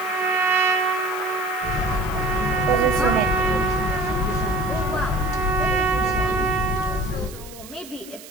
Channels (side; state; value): right; noise; hiss, 17 dB below the sound